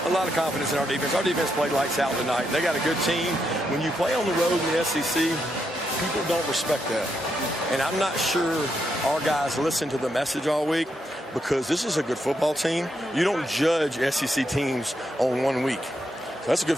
A lot of confidence in our defense. Our defense played lights out tonight. They got a good team. When you play on the road in the SEC, people don't respect that. And I'm not sure our guys listen to the message all week, because this is a good football team. You don't judge SEC teams on 1 week. So that's a good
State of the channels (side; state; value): both; normal; correlation 0.81